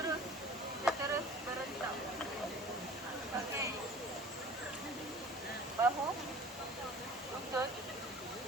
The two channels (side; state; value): both; normal; correlation 0.44